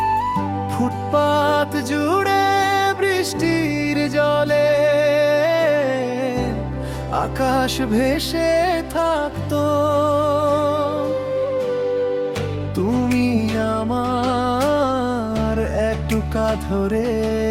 ফুটপাত জুড়ে বৃষ্টির জলে আকাশ ভেসে থাকতো, তুমি আমার একটুকা ধরে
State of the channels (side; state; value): both; identical; correlation 1.00